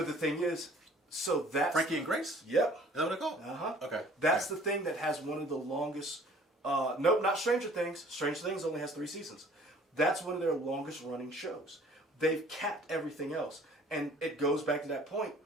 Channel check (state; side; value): normal; both; correlation 0.53